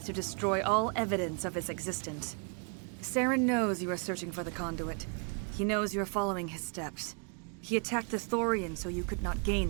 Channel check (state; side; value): quieter; left; 39.7 dB